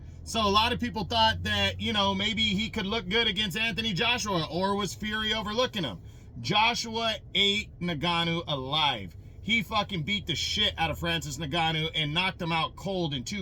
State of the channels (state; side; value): identical; both; correlation 1.00